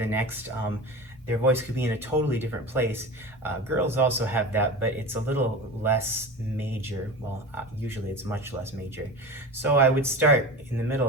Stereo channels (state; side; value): normal; both; correlation 0.30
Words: next, their voice could be in a totally different place. Girls also have that, but it's a little less major. Well, usually it's much less major. So I would start in the middle